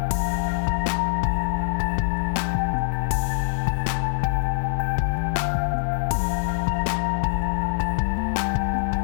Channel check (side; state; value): right; silent; 63 dB below the other